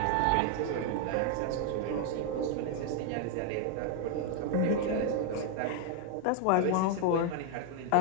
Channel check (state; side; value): different; both; correlation 0.00